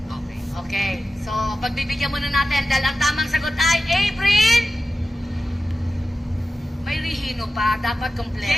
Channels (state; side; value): normal; both; correlation 0.93